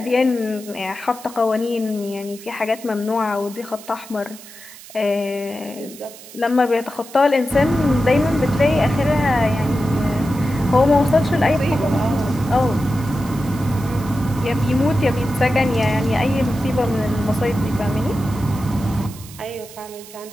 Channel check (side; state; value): right; noise; hiss, 18 dB below the sound